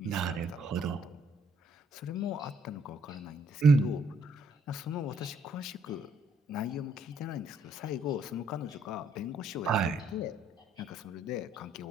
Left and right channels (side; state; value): both; normal; correlation 0.67